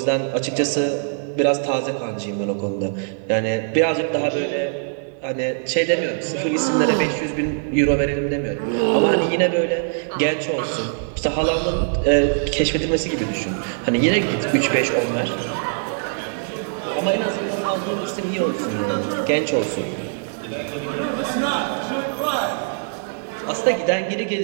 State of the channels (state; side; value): silent; left; digital silence